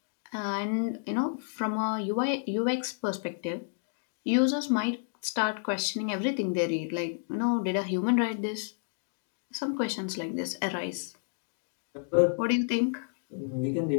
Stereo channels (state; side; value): silent; right; digital silence